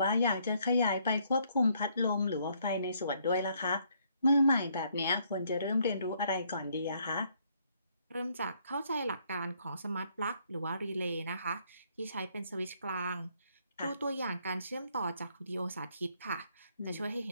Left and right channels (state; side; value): inverted; both; correlation -0.69